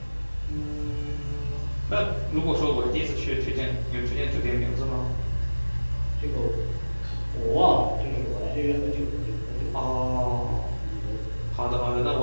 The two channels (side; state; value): both; inverted; correlation -1.00